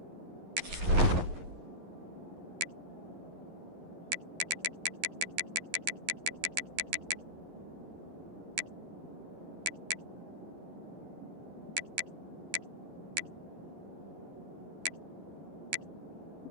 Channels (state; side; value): late; left; 11 ms